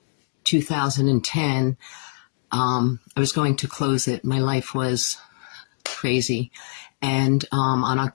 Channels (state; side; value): silent; right; digital silence